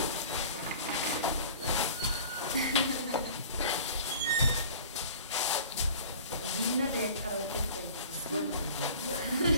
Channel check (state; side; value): inverted; both; correlation -0.44